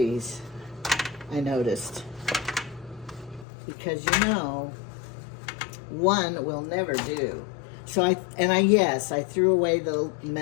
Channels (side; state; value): right; drops out; at 3.5 s